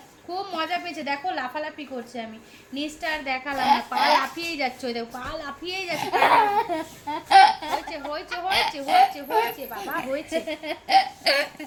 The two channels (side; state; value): both; identical; correlation 1.00